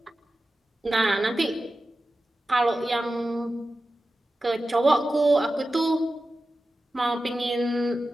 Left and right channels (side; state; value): both; normal; correlation 0.93